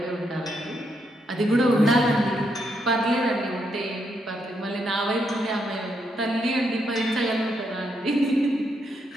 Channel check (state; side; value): normal; both; correlation 0.78